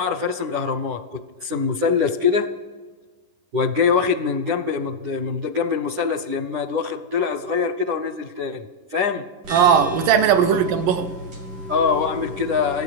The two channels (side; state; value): left; late; 11 ms